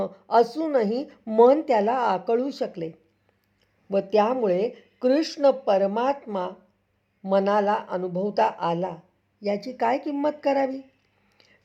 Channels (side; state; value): both; identical; correlation 1.00